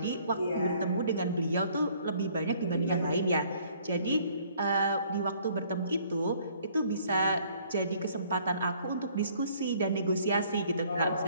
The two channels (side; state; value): both; inverted; correlation -0.60